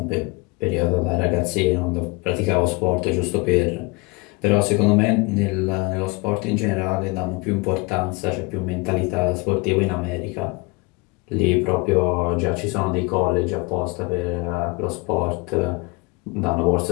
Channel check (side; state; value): right; quieter; 26.4 dB